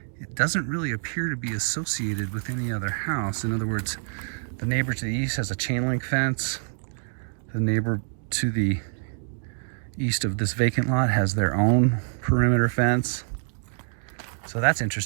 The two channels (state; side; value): silent; left; digital silence